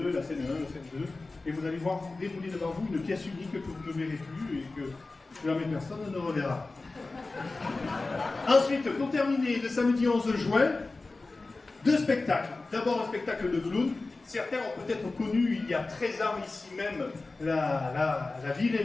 la scène 1, la scène 2. Et vous allez voir dérouler devant vous une pièce unique que vous ne verrez plus et que jamais personne ne reverra. Ensuite, pour terminer, le samedi 11 juin, 2 spectacles. D'abord un spectacle de clown. Certains ont peut-être connu il y a 13 ans ici même la vie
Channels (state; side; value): quieter; right; 3.4 dB